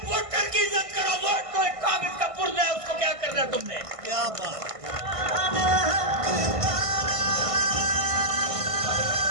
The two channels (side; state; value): left; late; 1.5 ms